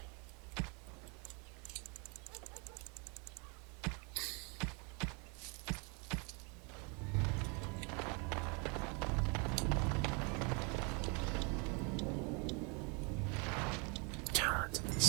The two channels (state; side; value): quieter; left; 33.0 dB